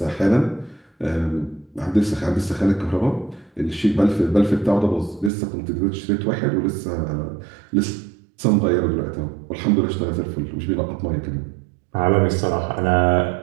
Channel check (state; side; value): drops out; left; at 5.3 s